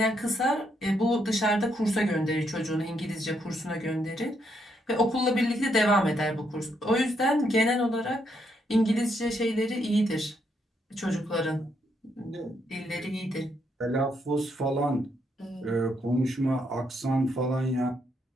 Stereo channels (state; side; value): normal; both; correlation 0.76